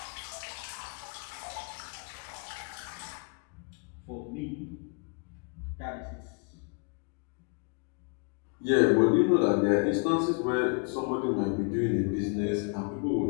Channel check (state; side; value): quieter; right; 35.6 dB